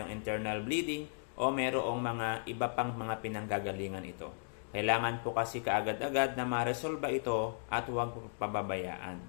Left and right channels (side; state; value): right; silent; digital silence